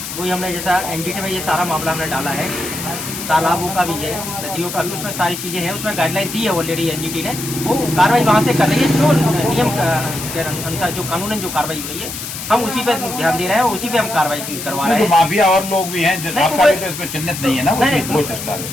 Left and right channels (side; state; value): left; noise; hiss, 8 dB below the sound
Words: वही हमने जैसा एनजीटी में ये सारा मामला हमने डाला है, तालाबों का भी है, नदियों का भी, उसमें सारी चीज़ें हैं, उसमें गाइडलाइन दी है ऑलरेडी एनजीटी ने, वो कार्रवाई वहाँ से कर रही है। जो नियम के अनुसार जो कानूनन जो कार्रवाई हो रही है, हम उसी पे ध्यान दे रहे हैं, उसी पे हम कार्रवाई करवा रहे हैं। माफिया और लोग भी हैं, आपका भी तो इसमें चिन्हित नहीं है ना?